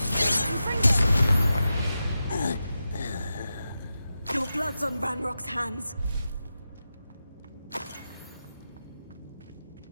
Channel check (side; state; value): both; inverted; correlation -0.91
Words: Your blood's on Ranrock's hands.